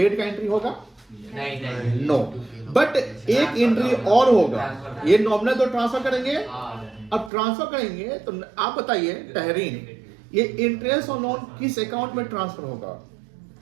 का एंट्री होगा? नहीं। नो, बट एक एंट्री और होगा। ये नॉमिनल तो ट्रांसफर करेंगे, अब ट्रांसफर करेंगे तो आप बताइए तहरीन, ये इंटरेस्ट और लोन किस अकाउंट में ट्रांसफर होगा?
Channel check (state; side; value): drops out; left; at 7.3 s